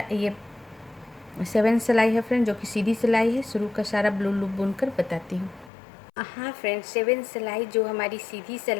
ये 7 सिलाई है फ्रेंड, जो कि सीधी सिलाई है। शुरू का सारा ब्लू लूप बुनकर बताती हूँ। हाँ फ्रेंड्स, 7 सिलाई जो हमारी सीधी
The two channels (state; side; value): drops out; right; at 5.7 s